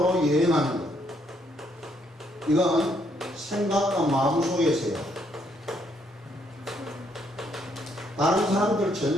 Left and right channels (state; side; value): normal; both; correlation 0.71